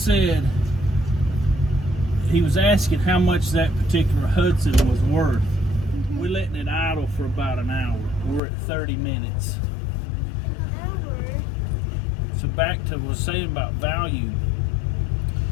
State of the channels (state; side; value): drops out; right; at 8.4 s